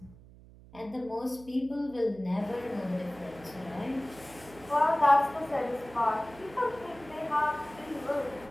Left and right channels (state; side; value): noise; right; hum, 21 dB below the sound